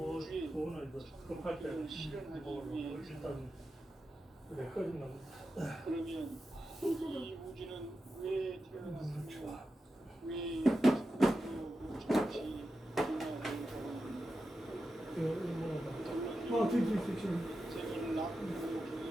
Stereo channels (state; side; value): normal; both; correlation 0.90